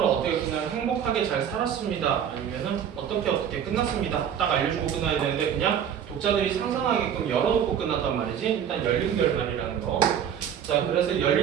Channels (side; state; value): left; quieter; 8.8 dB